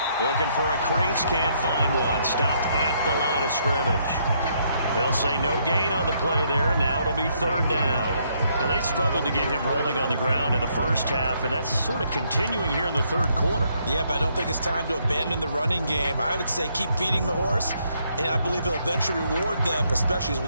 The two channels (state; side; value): inverted; both; correlation -0.72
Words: Looking for a crease, can't find one. Stopped at the line of scrimmage. They'll say no gain on the play there. Now it'll be third down. Now they struggled to get him rolling on the ground in the first half, and that's sort of continuing here in the third quarter. Yeah, but I don't think it's time to abandon the running game. I would say keep feeding the horse, and I believe he'll eventually reward them, especially as we